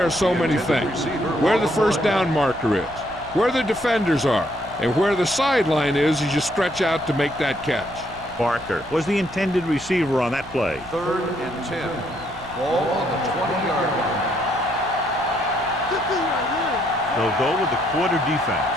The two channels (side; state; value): right; noise; rumble, 19 dB below the sound